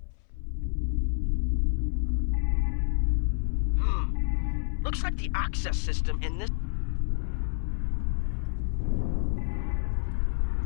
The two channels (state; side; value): silent; right; 59 dB below the other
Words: Looks like the access system in this...